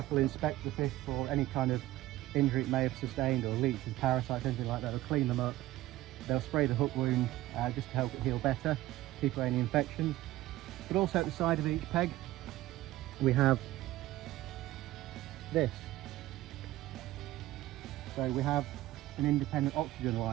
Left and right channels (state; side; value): quieter; left; 16.2 dB